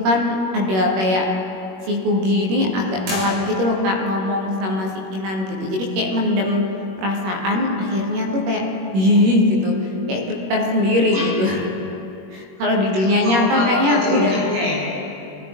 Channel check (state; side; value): late; left; 21 ms